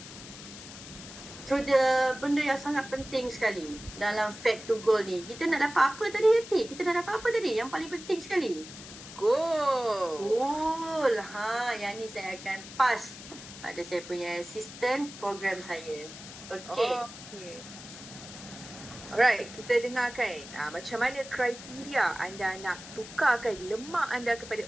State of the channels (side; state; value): left; noise; hiss, 14 dB below the sound